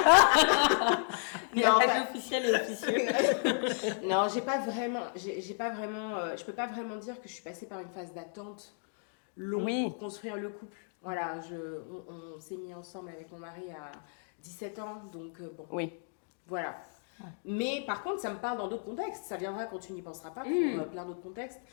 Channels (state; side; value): silent; right; 56 dB below the other